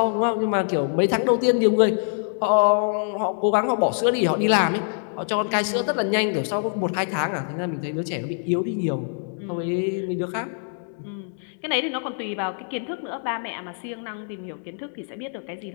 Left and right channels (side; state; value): right; silent; digital silence